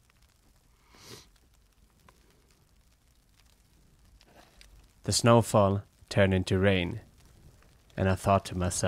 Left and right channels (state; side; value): identical; both; correlation 1.00